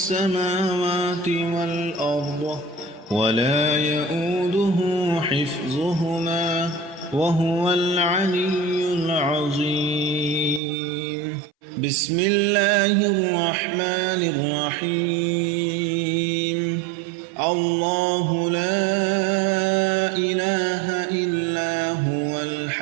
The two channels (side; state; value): left; drops out; at 10.6 s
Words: والأرض ولا يؤوده حفظهما وهو العلي العظيم بسم الله الرحمن الرحيم الله لا إله إلا هو